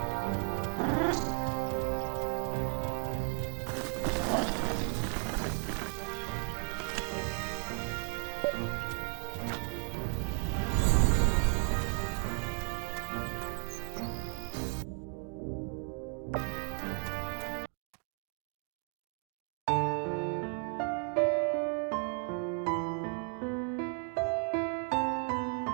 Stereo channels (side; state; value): left; quieter; 39.5 dB